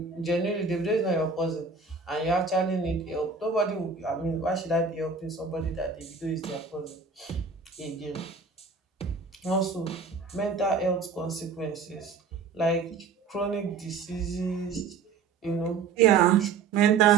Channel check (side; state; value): left; quieter; 5.1 dB